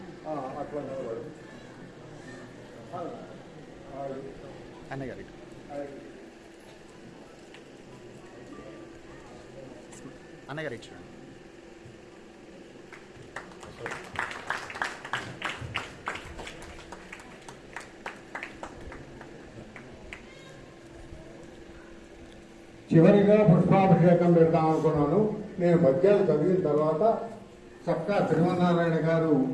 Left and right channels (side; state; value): both; identical; correlation 1.00